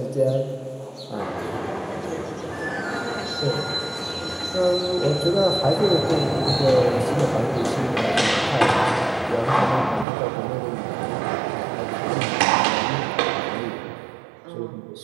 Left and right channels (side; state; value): left; drops out; at 10.1 s